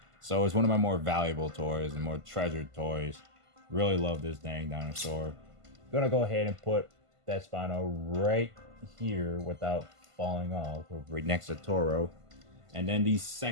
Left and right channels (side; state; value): left; late; 1.5 ms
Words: So it's one of my more valuable toys and more treasured toys. Really love this dang dinosaur. Gonna go ahead and put that Spino right here without falling off, right next to Toro. And then the